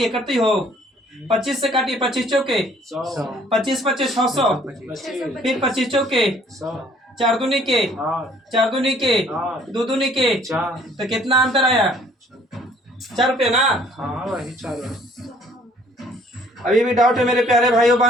करते हो 25 से काटिए, 25 चौके 25 25 600, फिर 25 चौके 4 दूनी के 4 दूनी के 2 दूनी के 4, तो कितना अंतर आया? 4 रुपये ना। अभी भी डाउट है मेरे प्यारे भाइयों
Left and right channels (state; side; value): normal; both; correlation 0.59